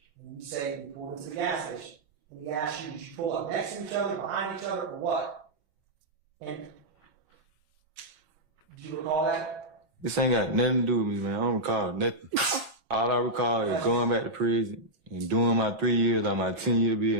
And you say you pulled into the gas station. And he asked you, did you pull up next to each other, behind each other, or what? And do you recall that? This ain't got nothing to do with me, man. I don't recall nothing. All I recall is going back to prison and doing my 3 years on my 10-year bid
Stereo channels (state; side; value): late; left; 7.2 ms